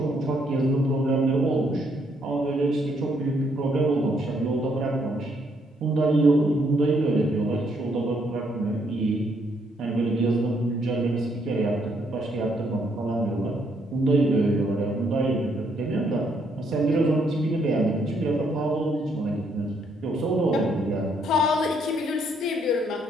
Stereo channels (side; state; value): both; normal; correlation 0.72